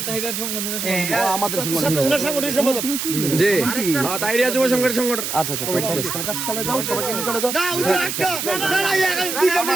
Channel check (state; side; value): noise; right; hiss, 3 dB below the sound